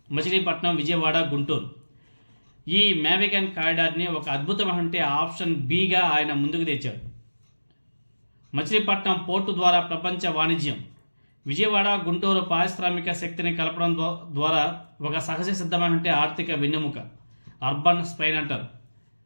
మచిలీపట్నం, విజయవాడ, గుంటూరు ఈ మ్యావిగన్ కారిడార్ని ఒక అద్భుతమైన ఆప్షన్ బిగా ఆయన ముందుకు తెచ్చారు. మచిలీపట్నం పోర్టు ద్వారా ప్రపంచ వాణిజ్యం, విజయవాడ, గుంటూరు పారిశ్రామిక శక్తిని కలపడం ద్వారా ఒక సహజ సిద్ధమైన ఆర్థిక వెన్నెముక, అర్బన్ స్పైన్ అంటారు.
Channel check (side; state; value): both; inverted; correlation -1.00